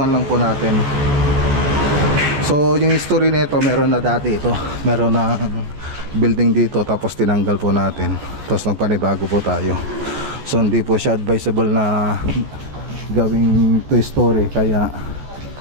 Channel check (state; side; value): late; left; 14 ms